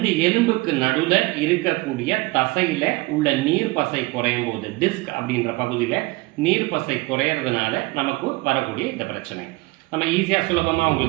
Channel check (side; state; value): left; quieter; 23.0 dB